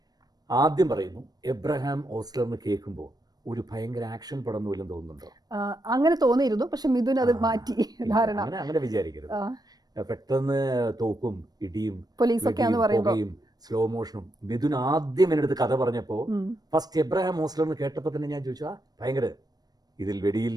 ആദ്യം പറയുന്നു, എബ്രഹാം ഓസ്ലർ എന്ന് കേൾക്കുമ്പോൾ ഒരു ഭയങ്കര ആക്ഷൻ പടം പോലും തോന്നുന്നുണ്ടോ? അങ്ങനെ തോന്നിയിരുന്നു, പക്ഷെ മിഥുൻ അത് മാറ്റി ധാരണ. അങ്ങനെ വിചാരിക്കരുത്. പെട്ടെന്ന് തോക്കും ഇടിയും പുകയും സ്ലോ മോഷനും. മിഥുൻ ആദ്യം എൻ്റെ അടുത്ത് കഥ പറഞ്ഞപ്പോൾ ഫസ്റ്റ് എബ്രഹാം ഓസ്ലർ എന്ന് കേട്ടപ്പോൾ തന്നെ ഞാൻ ചോദിച്ചു, ഭയങ്കര ഇതിൽ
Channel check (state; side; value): late; left; 0.19 ms